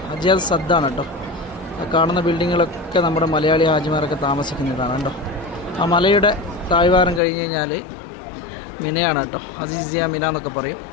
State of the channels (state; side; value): drops out; right; at 7.2 s